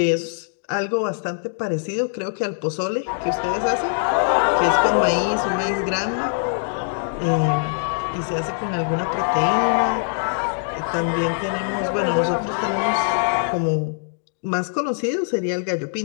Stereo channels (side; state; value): right; silent; digital silence